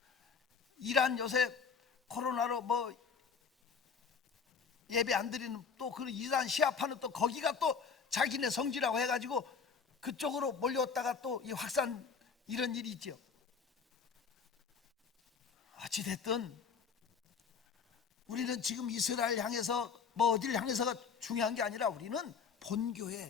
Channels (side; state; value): right; quieter; 5.9 dB